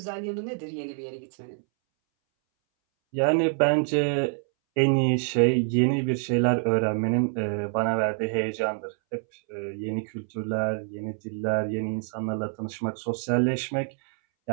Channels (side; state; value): left; silent; 61 dB below the other